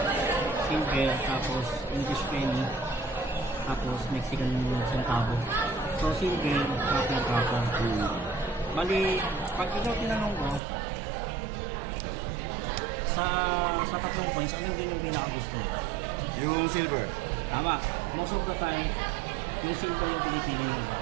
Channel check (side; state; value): left; drops out; at 10.6 s